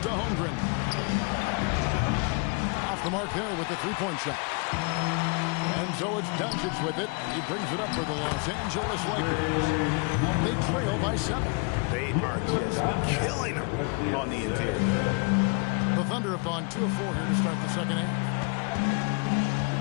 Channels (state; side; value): quieter; right; 33.4 dB